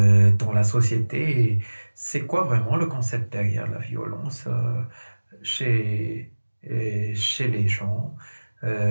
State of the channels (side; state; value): both; inverted; correlation -1.00